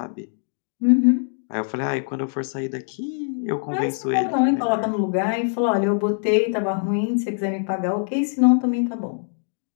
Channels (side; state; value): right; silent; digital silence